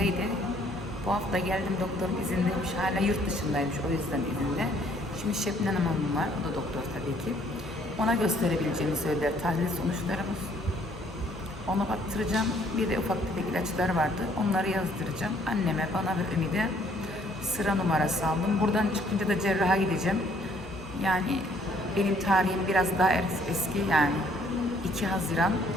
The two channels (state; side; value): normal; both; correlation 0.63